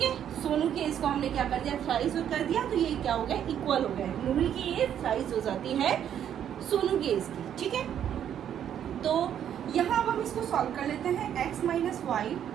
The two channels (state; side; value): quieter; left; 9.6 dB